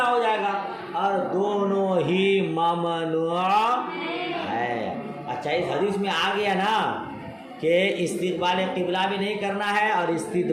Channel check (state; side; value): identical; both; correlation 1.00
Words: ہو جائے گا، اور دونوں ہی ممنوع ہے. اچھا، اس حدیث میں آ گیا نا کہ استقبال قبلہ بھی نہیں کرنا ہے اور